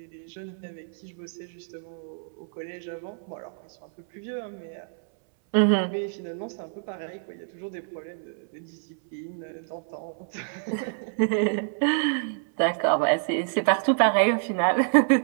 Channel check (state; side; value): silent; left; 60 dB below the other